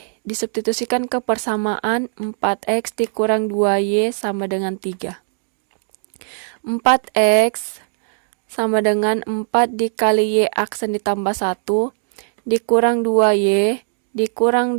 disubstitusikan ke persamaan 4X dikurang 2Y sama dengan 3. 4X sama dengan 4 dikali Y aksen ditambah 1 dikurang 2Y dikurang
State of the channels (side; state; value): left; silent; digital silence